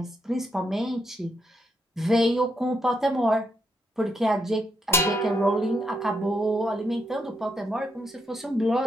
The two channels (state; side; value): normal; both; correlation 0.79